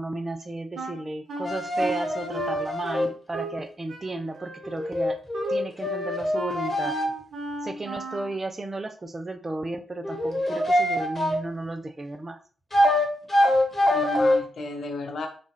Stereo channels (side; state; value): both; normal; correlation 0.83